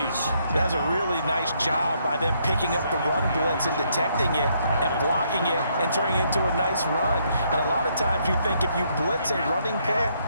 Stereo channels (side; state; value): both; inverted; correlation -0.72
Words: That's a really nice job by them picking up the run blitz and detecting it and blocking it and turning it into a nice run. And a lot of times you think if you blitz a running play,